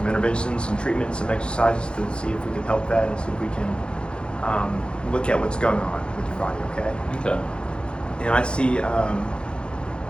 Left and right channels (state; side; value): late; right; 0.054 ms